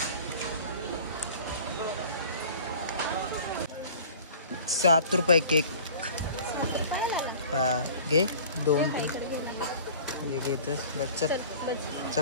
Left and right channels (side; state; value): both; inverted; correlation -0.45